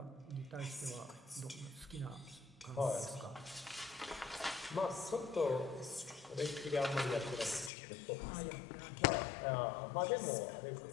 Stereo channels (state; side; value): drops out; right; at 7.7 s